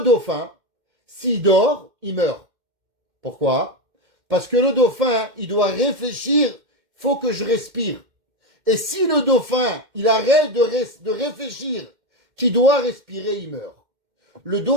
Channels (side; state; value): left; late; 2.1 ms